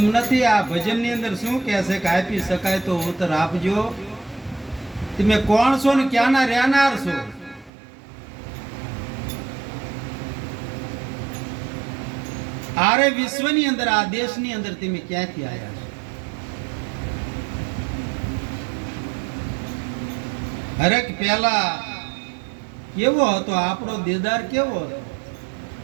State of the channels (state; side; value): drops out; left; at 7.7 s